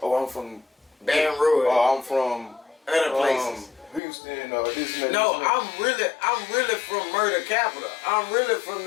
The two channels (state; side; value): drops out; right; at 4.0 s